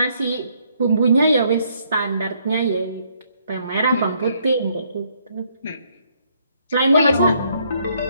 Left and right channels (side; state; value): both; inverted; correlation -0.69